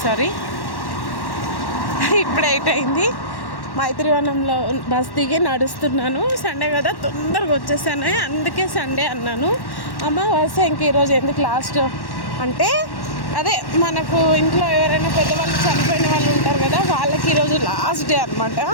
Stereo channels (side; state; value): right; late; 1.1 ms